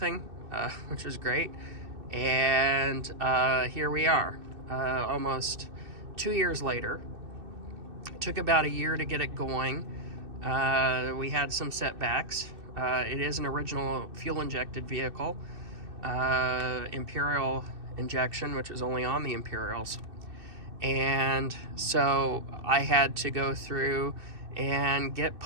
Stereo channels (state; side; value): late; left; 2.6 ms